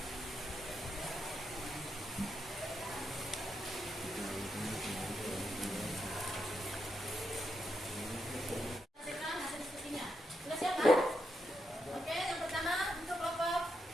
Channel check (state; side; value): normal; both; correlation 0.83